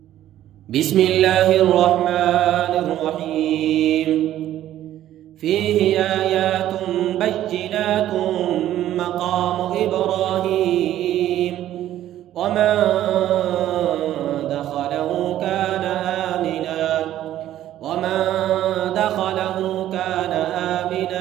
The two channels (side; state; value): left; quieter; 12.6 dB